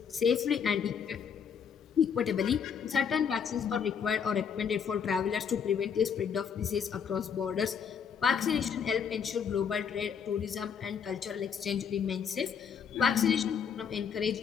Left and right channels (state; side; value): quieter; right; 7.2 dB